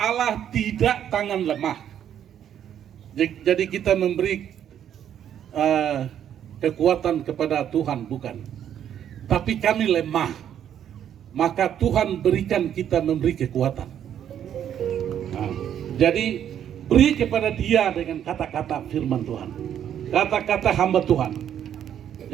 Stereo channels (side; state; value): left; quieter; 9.8 dB